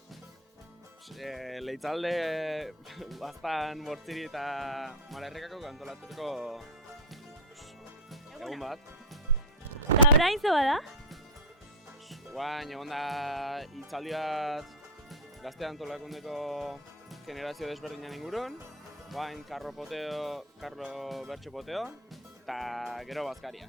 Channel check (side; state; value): both; normal; correlation 0.08